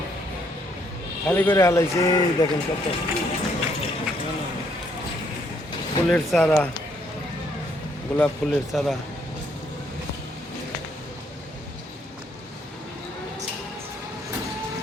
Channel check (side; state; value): both; normal; correlation 0.70